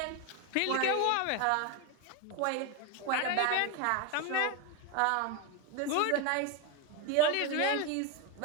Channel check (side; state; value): both; different; correlation 0.02